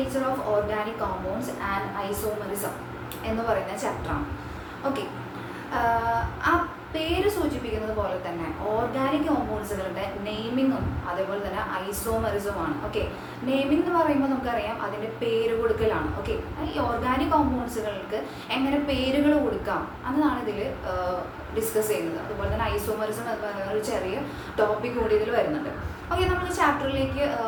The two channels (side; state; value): both; identical; correlation 1.00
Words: of organic compounds and isomerism എന്ന് പറയുന്ന ചാപ്റ്ററാണ്. ഓക്കെ, ആ പേര് സൂചിപ്പിക്കുന്നത് പോലെ തന്നെ ഓർഗാനിക് കോമ്പൗണ്ട്സുകളുടെ നെയിമിങ്ങും അതേപോലെ തന്നെ ഐസോമറിസമാണ്. ഓക്കെ, നെയിമിംഗ് എന്ന് പറയുമ്പോൾ നമുക്കറിയാം അതിൻ്റെ പേര് കൊടുക്കലാണ്. ഓക്കെ, ഈ ഓർഗാനിക് കോമ്പൗണ്ട്സുകൾക്ക് എങ്ങനെ പേരുകൾ കൊടുക്കാം എന്നതാണ് ഇതിൽ ഡിസ്കസ് ചെയ്യുന്നത്. അതുപോലെ തന്നെ ഐസോമറിസം എന്ന് പറയുന്ന ഒരു ചെറിയ ടോപ്പിക് കൂടി ഇതിൽ വരുന്നുണ്ട്. ഓക്കെ, നമ്മൾ ചാപ്റ്ററിലേക്ക്